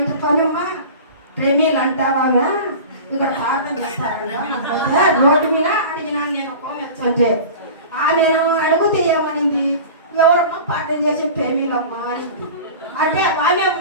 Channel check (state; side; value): inverted; both; correlation -0.36